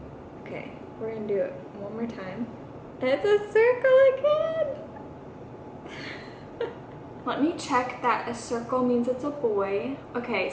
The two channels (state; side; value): identical; both; correlation 1.00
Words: Okay, we're gonna do it one more time. It's a circle again! Let me check that a circle means it's a boy. Okay,